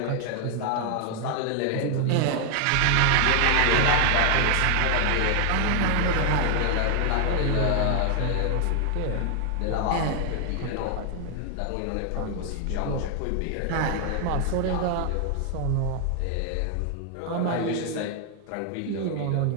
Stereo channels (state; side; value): different; both; correlation 0.00